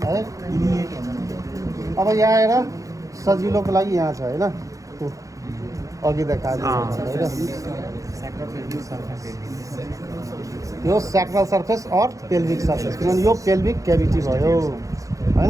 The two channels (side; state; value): left; late; 0.16 ms